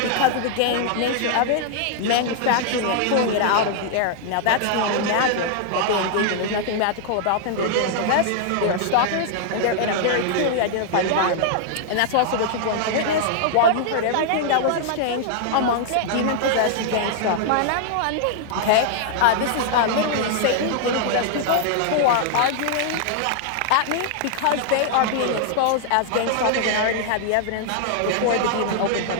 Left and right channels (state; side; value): different; both; correlation -0.01